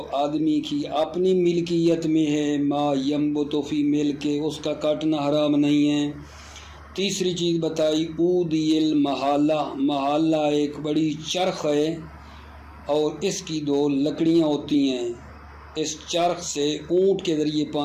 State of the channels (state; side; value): identical; both; correlation 1.00